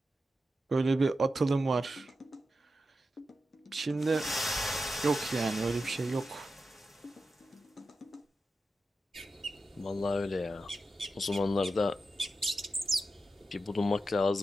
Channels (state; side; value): normal; both; correlation 0.90